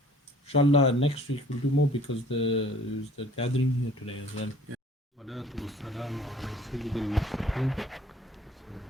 Inshallah, next week we'll do more, because there's the gathering here today as well.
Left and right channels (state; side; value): normal; both; correlation 0.53